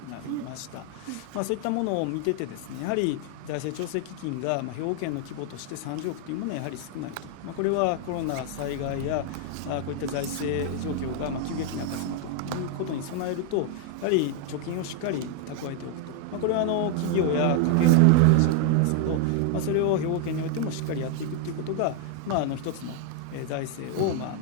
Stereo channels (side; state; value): both; different; correlation 0.00